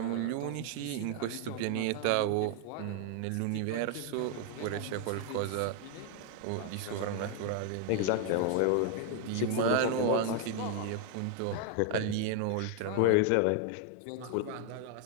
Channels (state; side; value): different; both; correlation 0.00